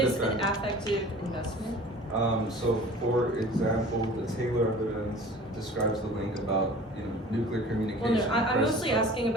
is defend. an affective investment? So for example, the Taylor evidence describes the link about nuclear Well, communication. no, I'm versus mostly asking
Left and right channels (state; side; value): normal; both; correlation 0.44